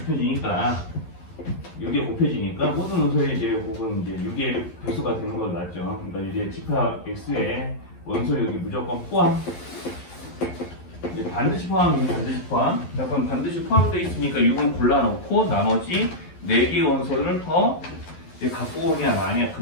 6에 곱해지니까 모든 원소의 이제 곱은 이제 6의 배수가 되는 거 맞죠? 그러니까 이제 집합 x에 원소 6이 무조건 포함. 이제 반드시 포함이면 반드시 포함. 자, 그럼 반드시 포함되어 있으니까 6은 골라놓고 나머지 4개의 원소를 더 이제 갖고 오냐 마냐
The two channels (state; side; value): late; right; 11 ms